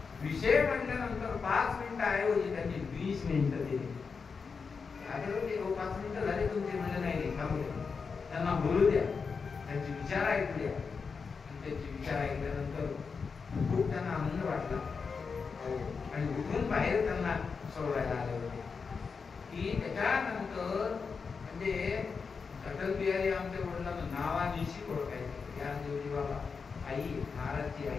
विषय मांडल्यानंतर 5 मिनिटं ऐवजी त्यांनी 20 मिनिटं दिली. आधी होते 5 मिनिटं झाले तुमचे, म्हणजे नाही थांबू द्या, त्यांना बोलू द्या, त्यांचे विचार ऐकू द्या. आणि त्यांचे विचार ऐकल्यानंतर खूप त्यांना आनंद वाटला आणि उठून बाहेर त्यांना सोडवायला आले होते. की त्याच्यानंतर म्हणजे अटल बिहारी आमच्या वडिलांना नावानिशी ओळखायचे. ज्ञानदेवजी बाबा, आई, महाराजची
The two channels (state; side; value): quieter; right; 5.3 dB